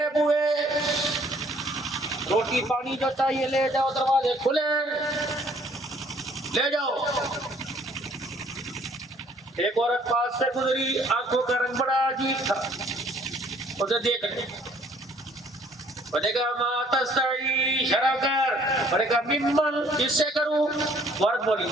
بوئے، روٹی پانی جو چاہیے لے جاؤ، دروازے کھلے لے جاؤ. ایک عورت پاس سے گزری، آنکھوں کا رنگ بڑا عجیب تھا، اسے دیکھ لیں. میں نے کہا ما تستعی، شرع کر. میں نے کہا ممن، کس سے کروں؟ عورت بولی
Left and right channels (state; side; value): normal; both; correlation 0.60